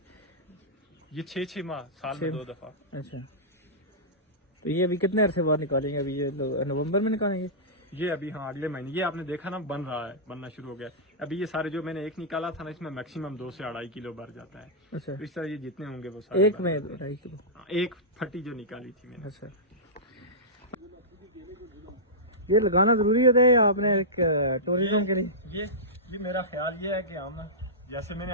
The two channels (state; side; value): normal; both; correlation -0.15